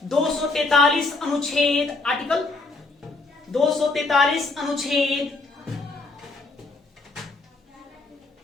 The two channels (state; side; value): quieter; right; 3.4 dB